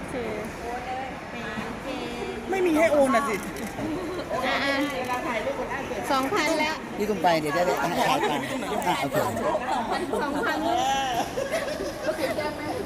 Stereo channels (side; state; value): both; identical; correlation 1.00